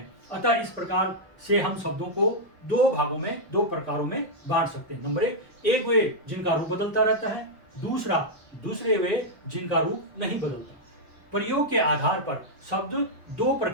अतः इस प्रकार से हम शब्दों को दो भागों में, दो प्रकारों में बांट सकते हैं। नंबर एक वे जिनका रूप बदलता रहता है, दूसरे वे जिनका रूप नहीं बदलता। प्रयोग के आधार पर शब्द दो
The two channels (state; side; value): normal; both; correlation -0.04